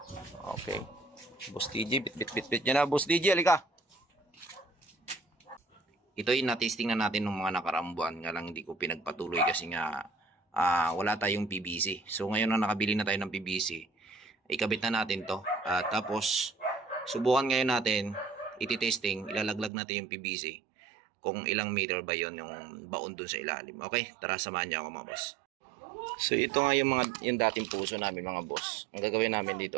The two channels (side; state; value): left; drops out; at 19.7 s